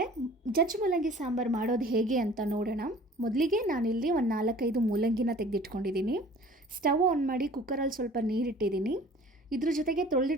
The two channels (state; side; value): normal; both; correlation 0.48